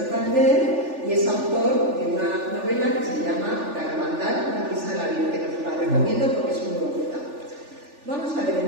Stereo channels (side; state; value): left; late; 3.4 ms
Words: y es autor de una novela que se llama Garabandal, una pieza de la Virgen, que os la recomiendo porque es muy bonita. Vamos a ver,